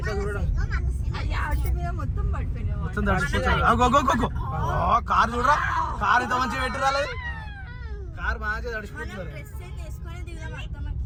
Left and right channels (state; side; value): identical; both; correlation 1.00